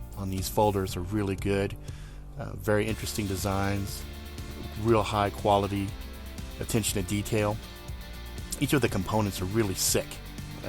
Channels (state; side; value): identical; both; correlation 1.00